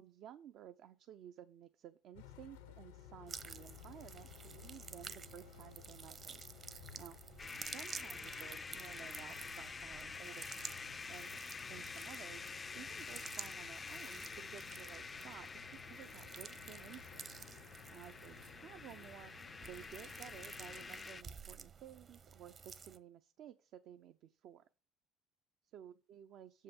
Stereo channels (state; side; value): normal; both; correlation 0.70